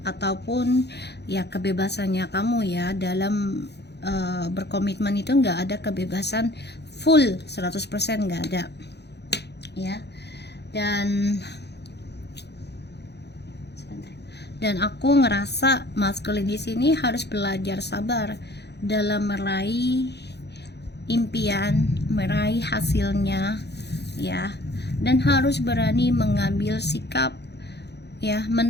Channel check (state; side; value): late; right; 0.49 ms